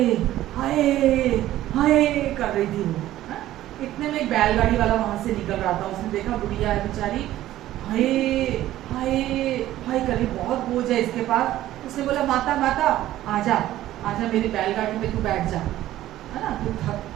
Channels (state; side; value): quieter; left; 14.1 dB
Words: हाय हाय कर रही थी वो। इतने में एक बैलगाड़ी वाला वहां से निकल रहा था, उसने देखा गुड़िया है बेचारी, हाय हाय हाय कर रही, बहुत बोझ है इसके पास। उसने बोला माता माता आजा आजा मेरी बैलगाड़ी में तू बैठ जा, है ना, तू थक,